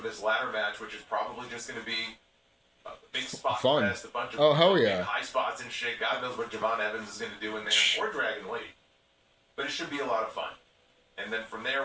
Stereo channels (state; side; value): identical; both; correlation 1.00